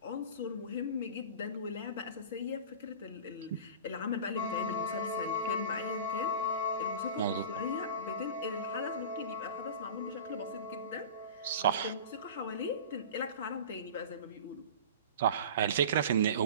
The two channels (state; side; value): inverted; both; correlation -0.35